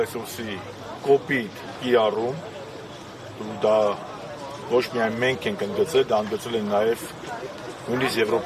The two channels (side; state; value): both; identical; correlation 1.00